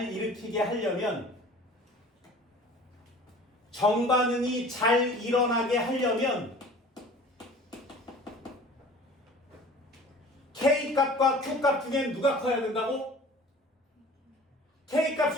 정반응이 잘 일어나게 하려면 K값과 Q값 중에 누가 커야 된다고?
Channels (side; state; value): both; normal; correlation 0.45